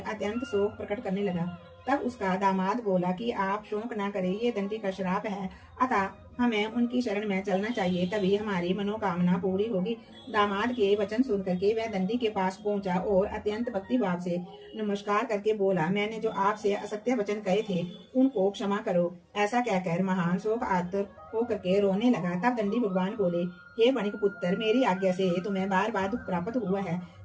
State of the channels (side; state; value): both; identical; correlation 1.00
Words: अत्यंत शोक प्रकट करने लगा। तब उसका दामाद बोला कि आप शोक ना करें, ये दंडी का श्राप है, अतः हमें उनकी शरण में चलना चाहिए, तभी हमारी मनोकामना पूरी होगी। दामाद के वचन सुन करके वह दंडी के पास पहुंचा और अत्यंत भक्ति भाव से नमस्कार करके बोला, मैंने जो आपसे असत्य वचन कहे थे उनको क्षमा करो। ऐसा कहकर महान शोक आतुर होकर के रोने लगा। तब दंडी भगवान बोले, हे बणिक पुत्र, मेरी आज्ञा से तुम्हें बार बार दुख प्राप्त हुआ है,